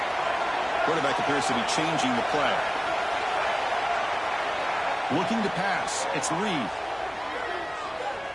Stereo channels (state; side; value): identical; both; correlation 1.00